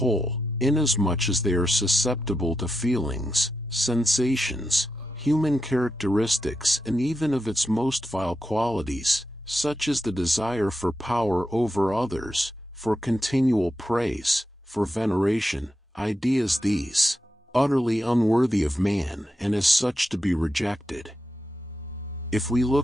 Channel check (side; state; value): both; normal; correlation 0.86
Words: inasmuch as they are susceptible to feelings, sensations, human characteristics, and even of its most vile qualities, such as the desire for power over others, for continual praise, for veneration, ideas these, utterly unworthy of man and as such to be rejected. If we